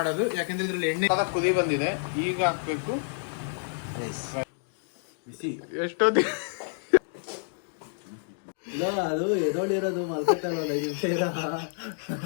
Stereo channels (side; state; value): right; silent; digital silence